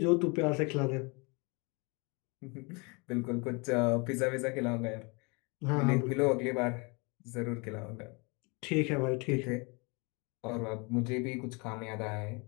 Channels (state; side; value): quieter; right; 29.7 dB